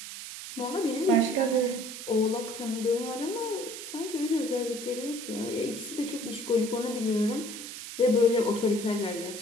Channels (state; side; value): noise; right; hiss, 10 dB below the sound